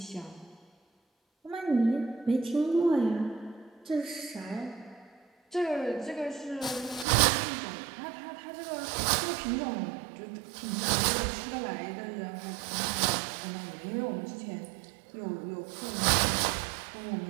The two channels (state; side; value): drops out; left; at 7.1 s